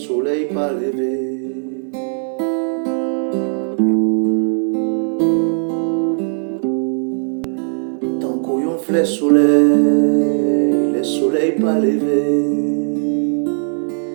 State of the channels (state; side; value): silent; left; digital silence